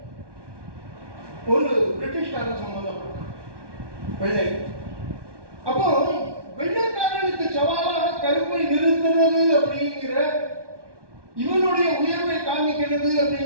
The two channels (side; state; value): left; late; 1.2 ms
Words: ஒரு பிரிட்டிஷ்காரன் சம்பந்தப்பட்டான், வெள்ளை. அப்போ வெள்ளைக்காரனுக்கு சவாலாக கருப்பை நிறுத்துறது அப்படிங்கிற, இவனுடைய உயர்வை காமிக்கிறது